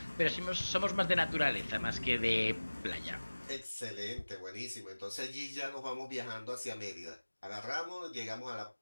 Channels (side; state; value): both; inverted; correlation -1.00